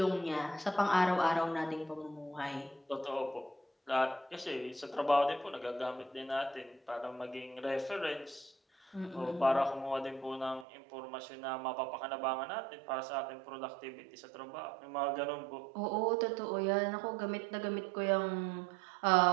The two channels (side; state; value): left; drops out; at 10.7 s